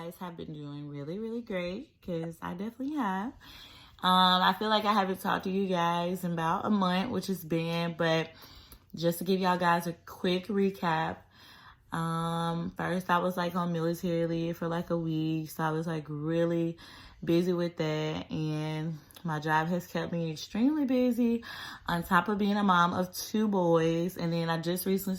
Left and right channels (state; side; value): identical; both; correlation 1.00